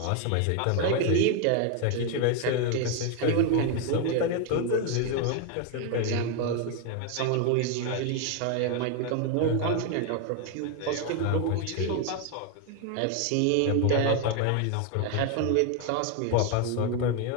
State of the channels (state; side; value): different; both; correlation 0.01